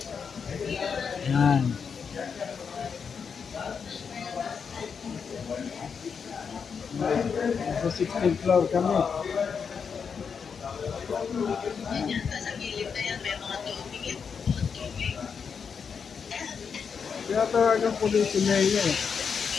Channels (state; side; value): quieter; right; 6.2 dB